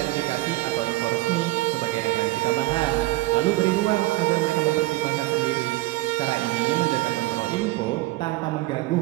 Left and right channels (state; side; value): quieter; left; 18.8 dB